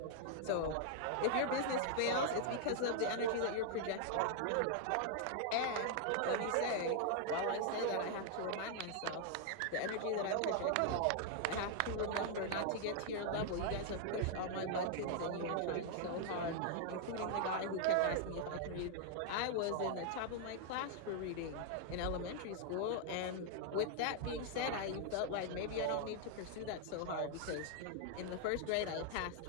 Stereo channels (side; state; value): both; different; correlation 0.00